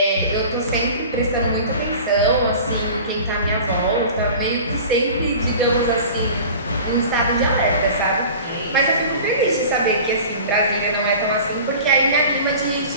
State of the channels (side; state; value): both; inverted; correlation -0.40